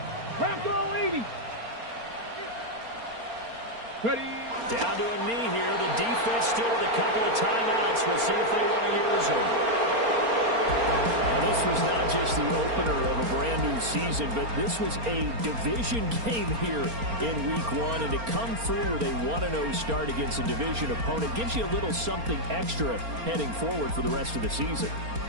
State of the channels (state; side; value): late; left; 4.3 ms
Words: Craft all 80. Ready. Down to a knee here. The defense still with a couple of timeouts. We'll see if they want to use them. This was not just the opener of a brand-new season, but this was a division game here in Week 1, and to come through with a 1-0 start against a division opponent gives you a little something extra heading forward for the rest of the season.